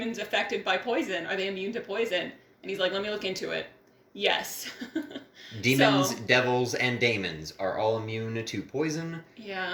affected by poison? Are they immune to poison? And he's like, let me look into it. Yes. Demons, So- devils, and daemons are all immune to poison.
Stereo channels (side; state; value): both; identical; correlation 1.00